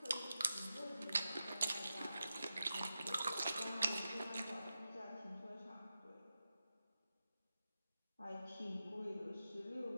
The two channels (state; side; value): inverted; both; correlation -0.90